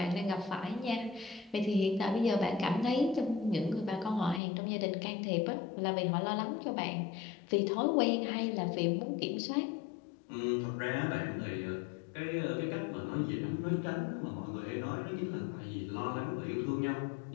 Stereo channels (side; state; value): right; drops out; at 4.4 s